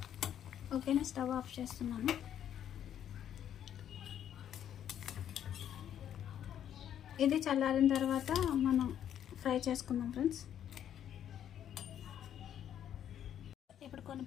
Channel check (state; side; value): quieter; right; 10.0 dB